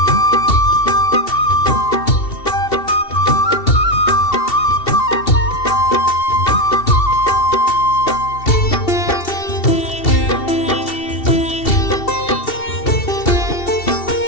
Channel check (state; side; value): late; right; 2.7 ms